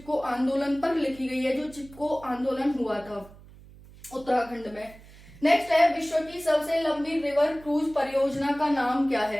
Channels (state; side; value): noise; right; hum, 21 dB below the sound